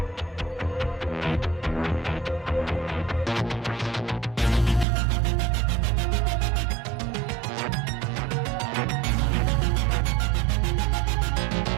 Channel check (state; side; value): drops out; left; at 4.9 s